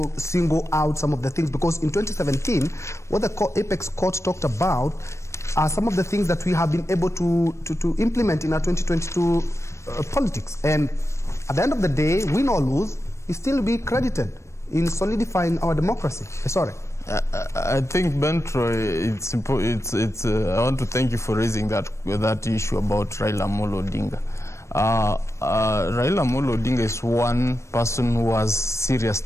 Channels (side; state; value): right; late; 0.14 ms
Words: single out some of the things. Because in 2017, what the Apex Court talked about are some of the things that we have been able to implement in our 2022 politics. And at the end of the day, win or lose, he still be credited in solidifying our democracy. Sorry. I think, Bentro, I want to thank you for raising that issue about Raila Amolo Odinga. Raila Amolo Odinga is one person who has serious